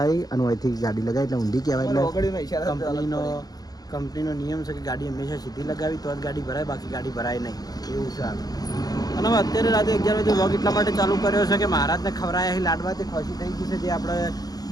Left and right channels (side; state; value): right; late; 0.19 ms